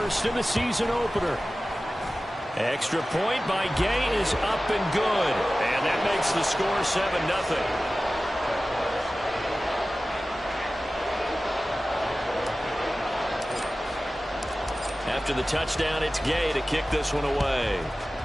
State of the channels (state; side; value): normal; both; correlation 0.96